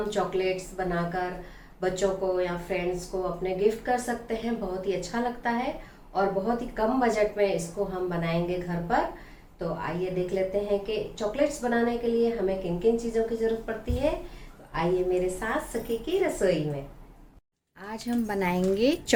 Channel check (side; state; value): both; identical; correlation 1.00